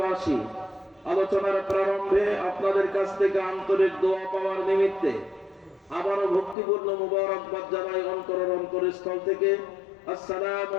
আলোচনার প্রারম্ভে আপনাদের কাছ থেকে আন্তরিক দোয়া পাওয়ার নিমিত্তে আবারও ভক্তিপূর্ণ মুবারকবাদ জানাই অন্তরের অন্তরস্থল থেকে। আসসালামু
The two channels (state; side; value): drops out; right; at 6.6 s